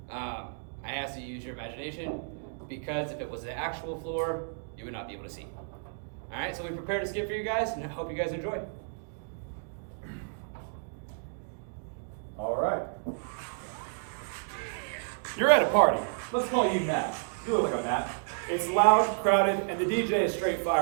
I ask that you use your imagination, because if it was the actual floor, you would not be able to see. All right, so we prepared a skit for you guys, and I hope you guys enjoy. All right. You're at a party. Let's call you Matt. You look like a Matt. It's loud, crowded, and the DJ is straight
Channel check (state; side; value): silent; left; digital silence